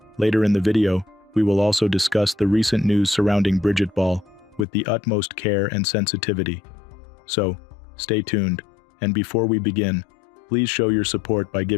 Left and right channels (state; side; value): drops out; right; at 4.6 s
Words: Later in the video, we will also discuss the recent news surrounding Bridget Ball with the utmost care and sensitivity. So, stay tuned, and before we begin, please show your support by